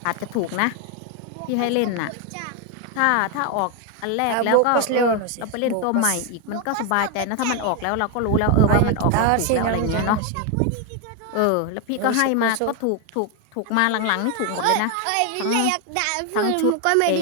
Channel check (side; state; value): both; different; correlation 0.01